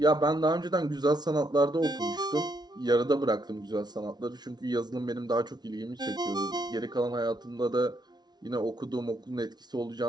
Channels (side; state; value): left; late; 0.20 ms